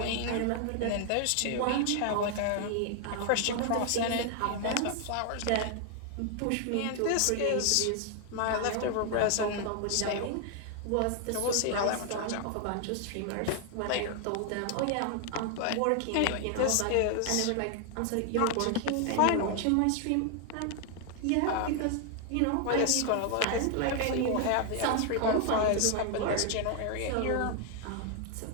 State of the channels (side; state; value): both; different; correlation 0.00